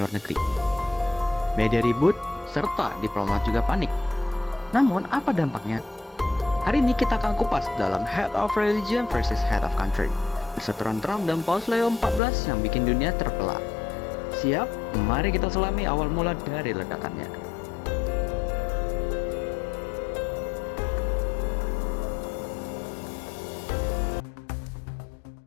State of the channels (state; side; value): drops out; right; at 12.2 s